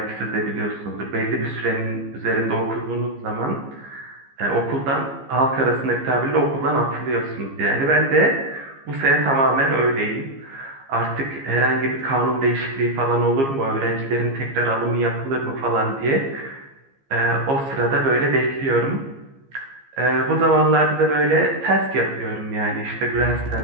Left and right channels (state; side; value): late; left; 15 ms